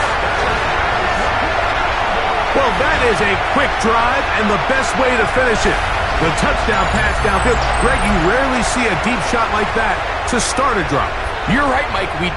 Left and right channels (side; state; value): both; identical; correlation 1.00